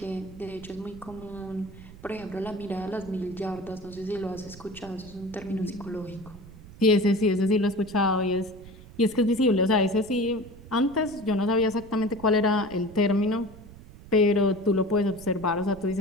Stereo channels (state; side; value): noise; right; rumble, 18 dB below the sound